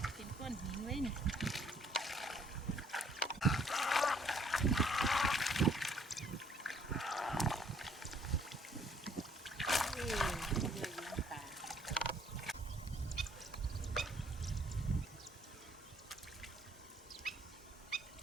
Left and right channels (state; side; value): normal; both; correlation 0.63